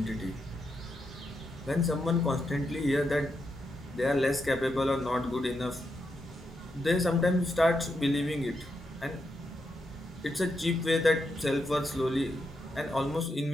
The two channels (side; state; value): both; normal; correlation 0.83